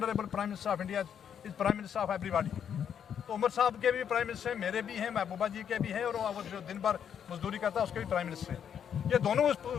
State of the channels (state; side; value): quieter; right; 8.4 dB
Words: prime minister of India is prime minister of everybody. तो उमर साहब के भी प्राइम मिनिस्टर हैं, मेरे भी हैं, महबूबा जी के भी हैं, और वो जो दिन भर मजदूरी करता है उसके भी प्राइम मिनिस्टर हैं। ये दोनों उस